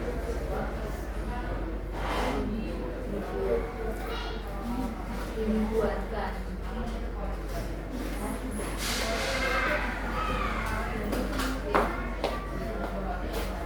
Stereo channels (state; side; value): identical; both; correlation 1.00